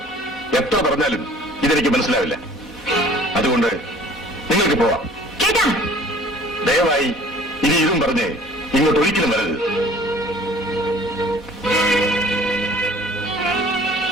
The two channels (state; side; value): normal; both; correlation 0.50